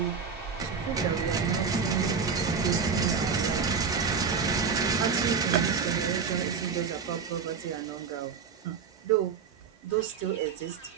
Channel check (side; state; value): left; quieter; 5.9 dB